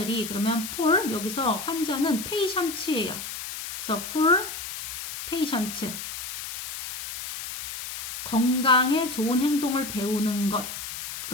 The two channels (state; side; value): noise; left; hiss, 8 dB below the sound